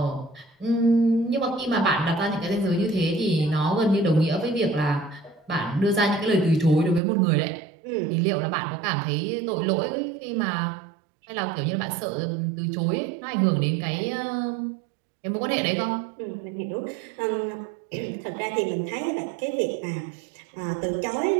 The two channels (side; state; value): left; drops out; at 7.0 s